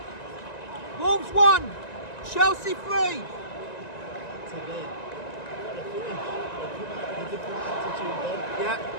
Wolves 1, Chelsea 3. Yeah.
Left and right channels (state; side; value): late; right; 1.9 ms